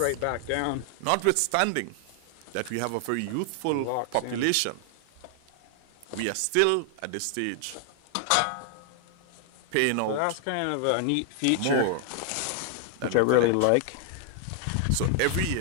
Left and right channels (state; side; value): different; both; correlation 0.00